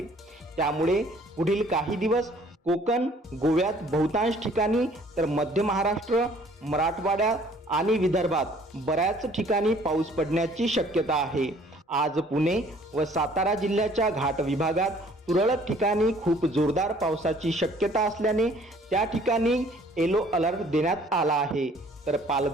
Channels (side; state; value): both; normal; correlation 0.57